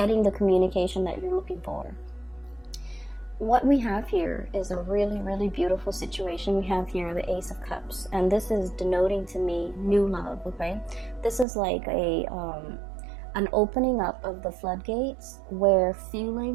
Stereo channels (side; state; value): left; drops out; at 11.5 s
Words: the communication that you're looking for. What we have here is a really, really beautiful situation. We have here the Ace of Cups, and this is denoting to me new love, okay? This is like an opening up of the floodgates where